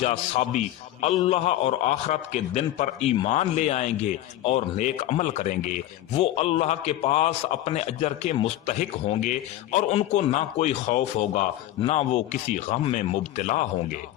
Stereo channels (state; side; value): quieter; right; 13.8 dB